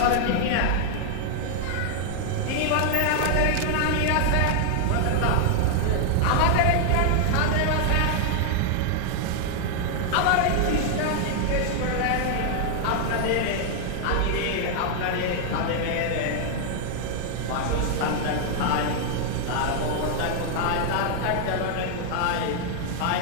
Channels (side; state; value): both; different; correlation 0.00